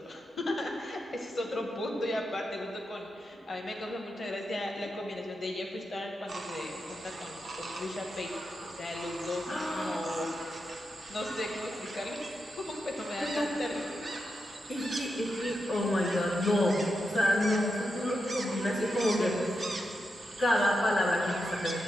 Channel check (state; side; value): normal; both; correlation 0.87